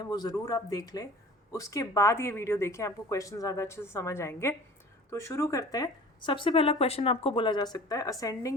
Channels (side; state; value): both; normal; correlation 0.44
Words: वो ज़रूर आप देख लें, उसके बाद ये वीडियो देखें, आपको क्वेश्चन ज़्यादा अच्छे से समझ आएंगे। तो शुरू करते हैं। सबसे पहला क्वेश्चन आपको बोला जा सकता है